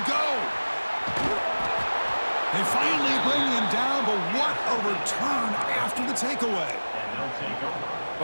go. They finally bring him down, but what a return after the takeaway.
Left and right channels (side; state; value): both; inverted; correlation -1.00